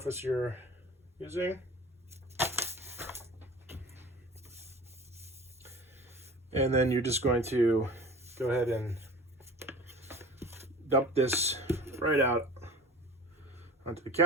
you're using. And then you're just going to go ahead and dump this right out onto the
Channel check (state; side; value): normal; both; correlation 0.40